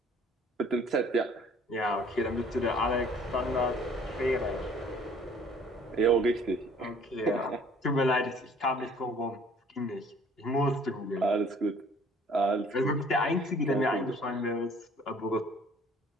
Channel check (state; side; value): normal; both; correlation 0.55